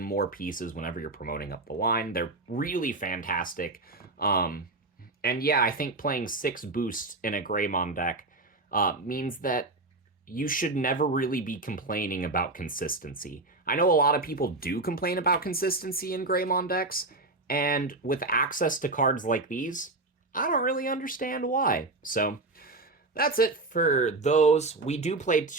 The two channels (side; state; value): left; quieter; 3.1 dB